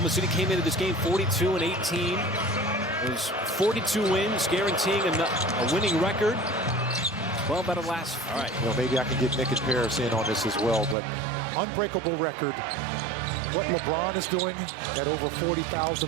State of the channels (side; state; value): left; drops out; at 11.0 s